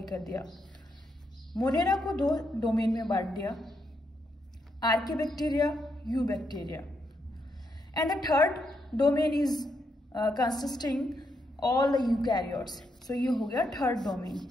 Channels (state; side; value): normal; both; correlation 0.80